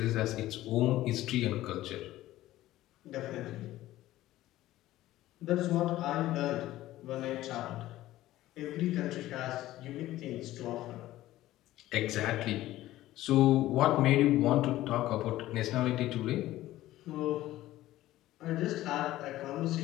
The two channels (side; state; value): right; quieter; 15.4 dB